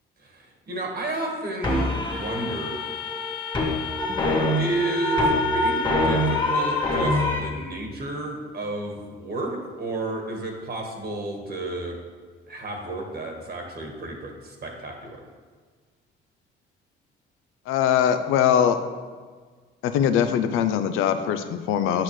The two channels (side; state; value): right; quieter; 3.3 dB